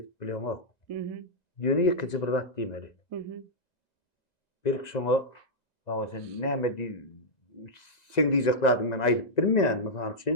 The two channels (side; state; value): right; late; 1.9 ms